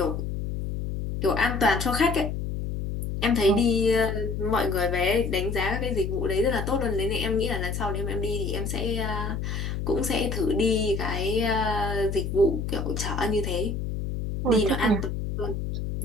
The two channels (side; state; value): left; noise; hum, 3 dB below the sound